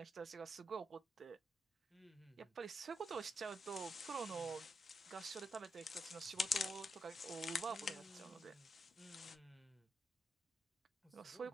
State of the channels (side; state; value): both; normal; correlation 0.83